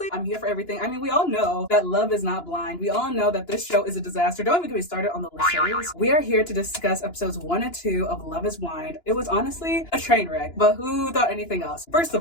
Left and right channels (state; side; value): late; right; 2.9 ms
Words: I'm here for everything. I mean, we all know that love is not blind. We all know that this show is a disaster. Don't even get me started on the Lachey's. We are here to discuss episodes 1 and 2 of Love is Blind. It was honestly a train wreck, but who thought anything else? First